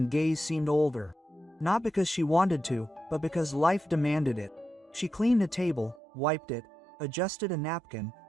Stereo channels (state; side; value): drops out; left; at 6.0 s